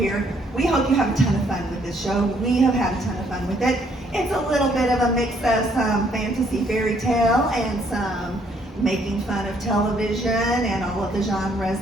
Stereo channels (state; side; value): normal; both; correlation 0.67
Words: We hope you have a ton of fun with this show. We have had a ton of fun with it. It's a little bit of a mix of some fantasy fairy tale and some making fun of television and all of the genres